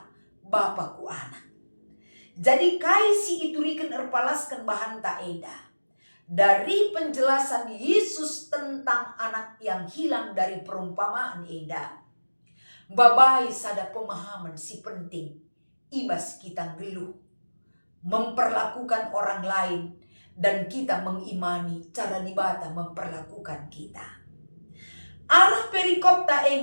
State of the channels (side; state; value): both; inverted; correlation -1.00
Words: Bapaku anak. Jadi kai si iturikan erpalaskan bahan ta eda. Dari penjelasan Yesus tentang anak yang hilang dari perumpamaan eda. Babai sada pemahaman si penting. Ibas kita geluh, memperlakukan orang lain, dan kita mengimani cara dibata memperlakukan kita. Arah perikop ta